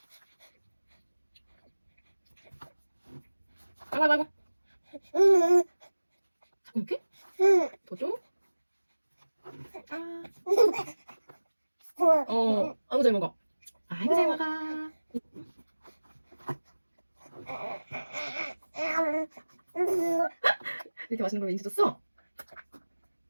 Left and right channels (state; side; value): inverted; both; correlation -1.00